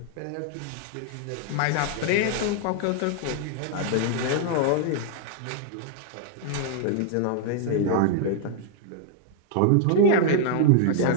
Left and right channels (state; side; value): different; both; correlation -0.01